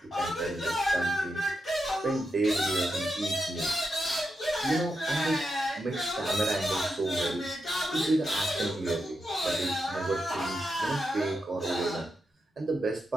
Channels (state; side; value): normal; both; correlation 0.86